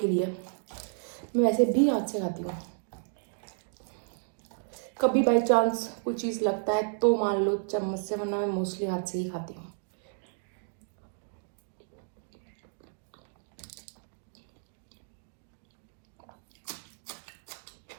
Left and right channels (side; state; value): left; silent; digital silence